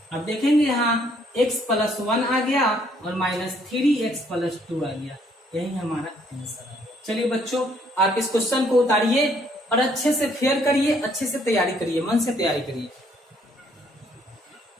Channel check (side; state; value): both; normal; correlation 0.66